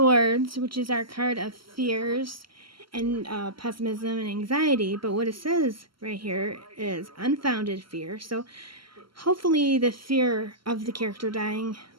which is our card of fears and pessimism and anxiety. But what it says right here is unfounded fear. So hopefully the fear of the character dying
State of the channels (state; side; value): late; left; 0.74 ms